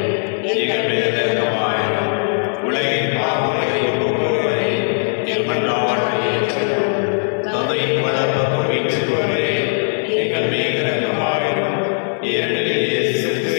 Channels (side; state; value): right; silent; 67 dB below the other